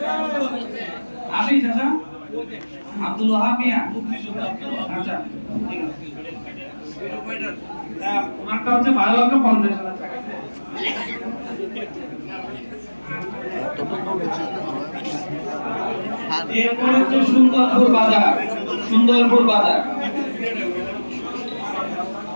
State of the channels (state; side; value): inverted; both; correlation -1.00